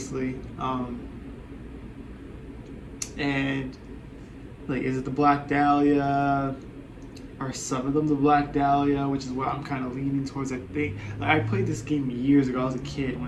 And... Like, is it the Black Dahlia? Are some of them the Black Dahlia? Which is what I'm kind of leaning towards, I think. Like, I played this game years ago. I was a kid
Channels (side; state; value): both; identical; correlation 1.00